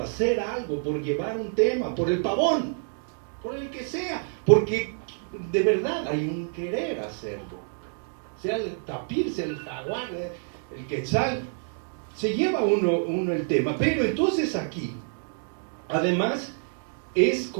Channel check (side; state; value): left; silent; 60 dB below the other